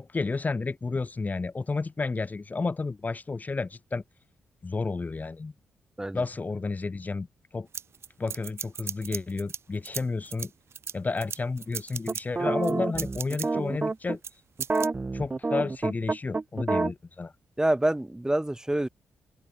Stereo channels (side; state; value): both; normal; correlation 0.88